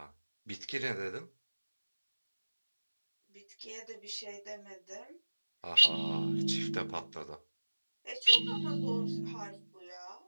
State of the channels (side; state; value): both; inverted; correlation -1.00